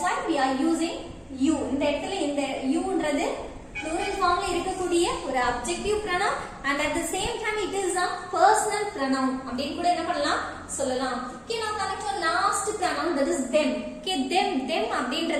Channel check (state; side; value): identical; both; correlation 1.00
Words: why we are using you. இந்த இடத்துல இந்த youன்றது plural formல இருக்கக்கூடிய ஒரு adjective pronoun and at the same time it is a personal pronoun அப்படினு கூட என்ன பண்ணலாம் சொல்லலாம். Okay, now coming to last pronoun, that is them. Okay, them